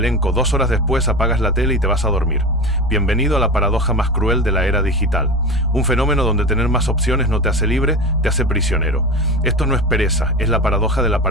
2 horas después apagas la tele y te vas a dormir. Bienvenido a la paradoja más cruel de la era digital. Un fenómeno donde tener más opciones no te hace libre, te hace prisionero. Esto no es pereza, es la paradoja de la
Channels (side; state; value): both; normal; correlation 0.27